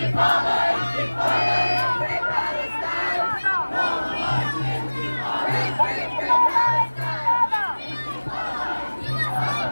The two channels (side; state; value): both; inverted; correlation -1.00